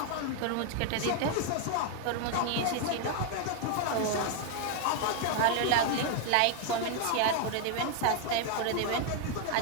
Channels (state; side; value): different; both; correlation 0.00